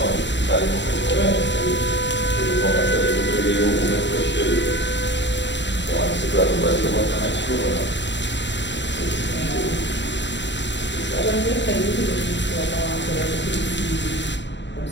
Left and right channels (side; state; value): right; late; 0.52 ms